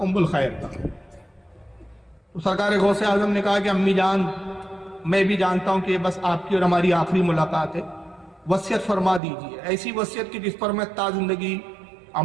ام الخیر تھا، تو سرکار غوث اعظم نے کہا کہ امی جان میں بھی جانتا ہوں کہ یہ بس آپ کی اور ہماری آخری ملاقات ہے، وصیت فرما دیجیے، ایسی وصیت کی جس پر میں تا زندگی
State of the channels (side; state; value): left; drops out; at 9.2 s